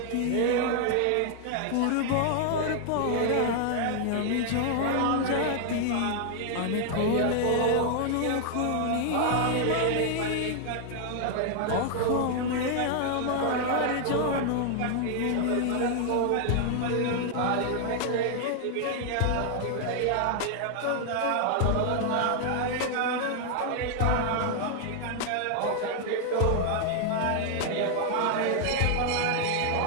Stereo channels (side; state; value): both; different; correlation 0.00